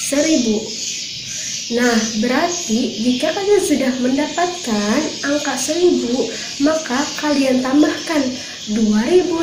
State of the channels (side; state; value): both; identical; correlation 1.00